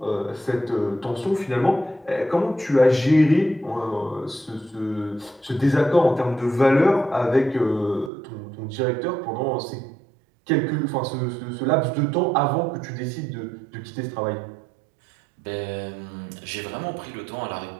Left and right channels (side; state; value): left; drops out; at 8.1 s